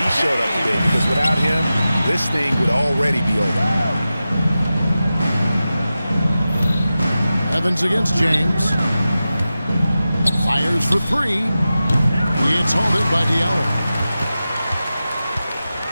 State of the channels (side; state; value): both; inverted; correlation -0.94